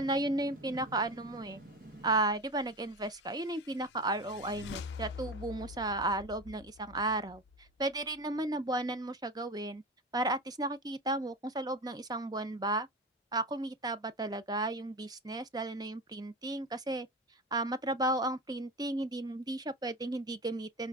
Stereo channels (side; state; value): both; normal; correlation 0.27